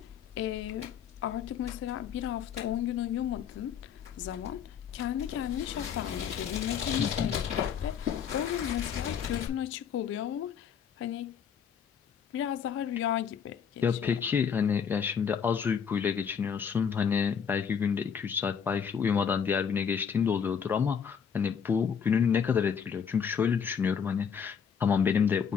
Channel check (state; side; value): quieter; right; 7.3 dB